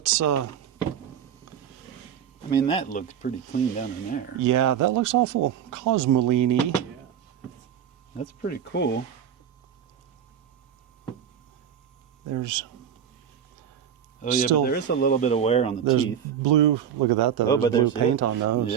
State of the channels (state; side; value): quieter; left; 8.8 dB